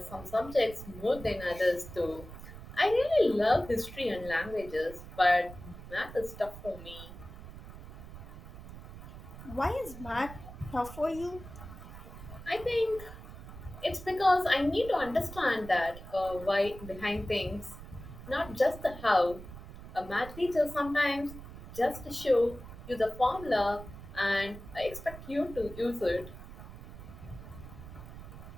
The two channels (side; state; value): right; noise; rumble, 14 dB below the sound